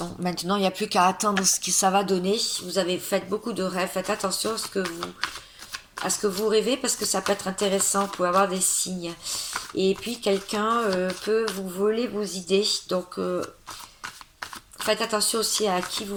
Maintenant, il n'y a plus qu'à attendre ce que ça va donner. Vous avez fait beaucoup de rêves. Faites attention à ce que vous rêvez parce que ça peut être intéressant. Vous pouvez avoir des signes. Et puis, quelqu'un peut vous voler vos idées. Donc, faites attention aussi à qui vous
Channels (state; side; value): identical; both; correlation 1.00